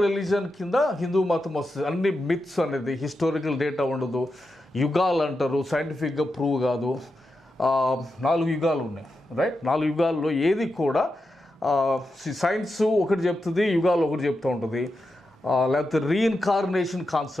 రిలీజన్ కింద హిందూ మతం వస్తుంది. అన్ని మిత్స్ అనేది హిస్టారికల్ డేటా ఉండదు. యుగాలు అంటారు, సైంటిఫిక్గా ప్రూవ్ కాదు. 4 యుగాలు ఉన్నాయి, రైట్? 4 యుగాల్లో ఏది కూడా సైన్స్ ఒకటి చెప్తుంది, యుగాలు ఒకటి చెప్తూ ఉంటుంది. లేకపోతే రీఇన్కార్నేషన్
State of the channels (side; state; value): both; normal; correlation 0.88